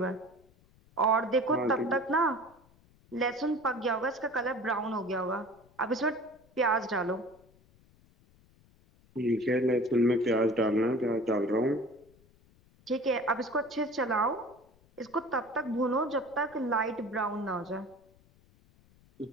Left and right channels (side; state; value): left; noise; rumble, 30 dB below the sound